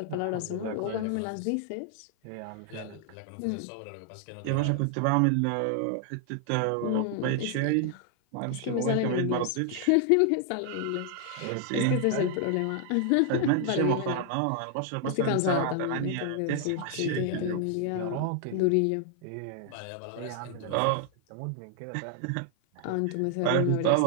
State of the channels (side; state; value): both; different; correlation 0.00